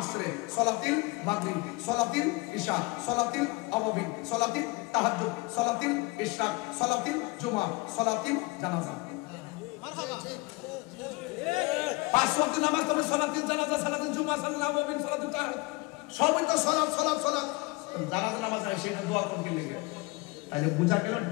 সালাতিল মাগরিব, সালাতিল ইশা, সালাতিল আওয়াবিন, সালাতিল তাহাজ্জুদ, সালাতিল ইশরাক, সালাতিল জুমা, সালাতিল জানাজা। মারহাবা। 5 ওয়াক্ত নামাজ তবে সালাতিল জানাজা, সালাতিল জুমা, সালাতিল আওয়াবিন, সালাতিল তাহাজ্জুদ, সবই তো সালাত সালাত সালাত। জানাজা নামাজ আছে সেটা দোয়া করতে লাগে, তাহলে বুঝা গেল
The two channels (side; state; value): right; quieter; 25.2 dB